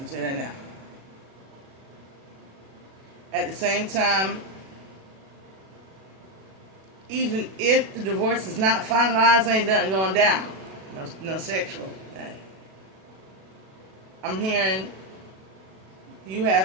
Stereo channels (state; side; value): late; left; 37 ms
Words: that now. At the same time, even if the divorce is not finalized, ain't nothing going down. No sexual thing. I'm hearing you